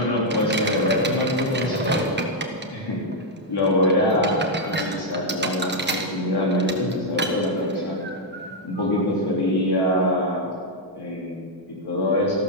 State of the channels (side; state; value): both; normal; correlation -0.02